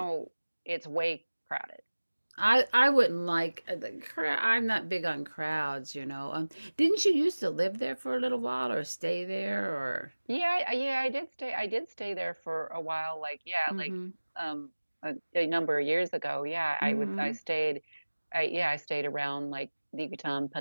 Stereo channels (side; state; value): both; inverted; correlation -1.00